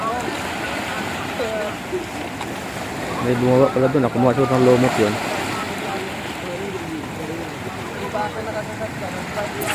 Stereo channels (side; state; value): both; identical; correlation 1.00